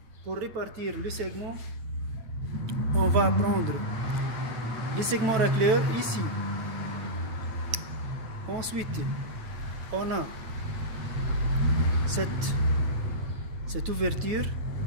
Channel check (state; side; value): late; left; 9.0 ms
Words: pour répartir le segment, on va prendre les segments racleurs ici. Ensuite, on a cette ouverture.